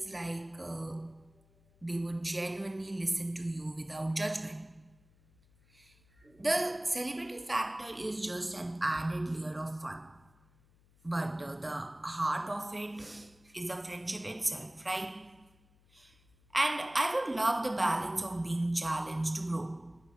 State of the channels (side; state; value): left; noise; hum, 30 dB below the sound